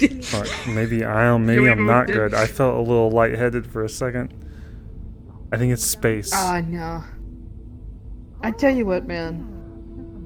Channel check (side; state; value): both; identical; correlation 1.00